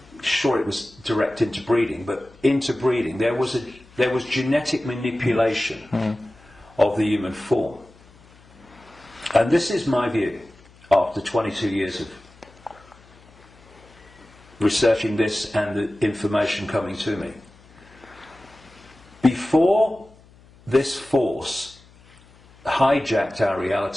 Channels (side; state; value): left; noise; hum, 26 dB below the sound